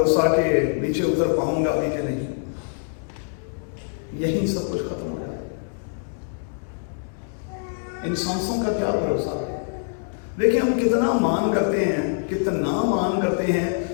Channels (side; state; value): right; silent; digital silence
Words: کہ نیچے اتر پاؤں گا بھی کہ نہیں. یہی سب کچھ ختم ہو جائے. ان سانسوں کا کیا بھروسہ ہے؟ دیکھیں ہم کتنا مان کرتے ہیں